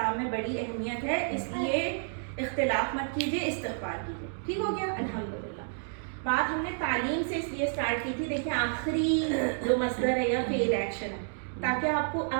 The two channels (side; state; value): left; silent; digital silence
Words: میں بڑی اہمیت ہے, اس لیے اختلاف مت کیجیے, استغفار کیجیے. ٹھیک ہو گیا. الحمدللہ. بات ہم نے تعلیم سے اس لیے اسٹارٹ کی تھی, دیکھیں آخری جو مصدر ہے یا فعل ایکشن ہے, تاکہ